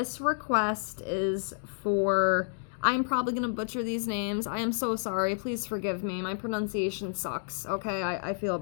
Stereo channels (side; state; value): right; silent; digital silence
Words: request is for, I'm probably going to butcher these names. I am so sorry. Please forgive me. My pronunciation sucks, okay? I feel